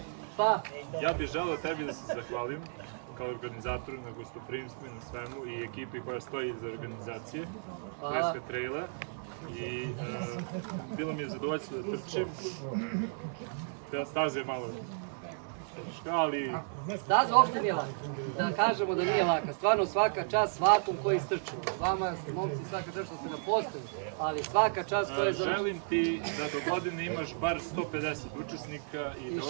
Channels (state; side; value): silent; left; 55 dB below the other